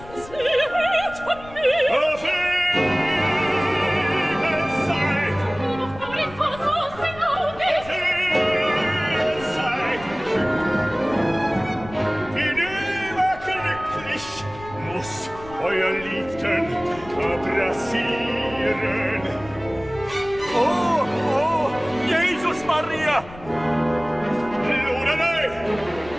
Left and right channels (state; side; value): noise; left; rumble, 17 dB below the sound